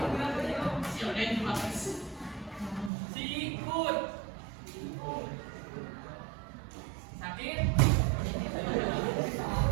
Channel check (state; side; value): drops out; left; at 2.9 s